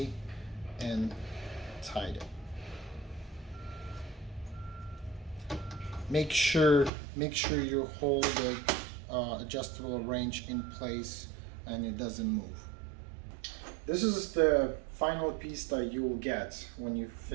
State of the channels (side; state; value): left; drops out; at 6.9 s